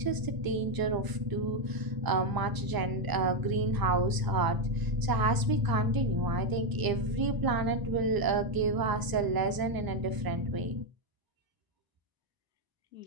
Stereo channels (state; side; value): late; left; 1.0 ms